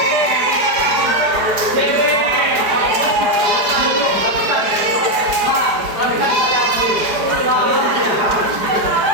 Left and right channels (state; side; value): late; left; 4.9 ms